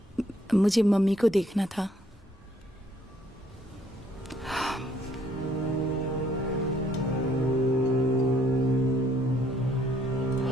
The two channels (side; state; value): both; normal; correlation 0.66